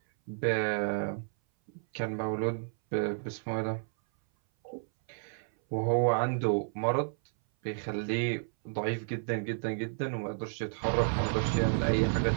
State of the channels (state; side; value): silent; left; 57 dB below the other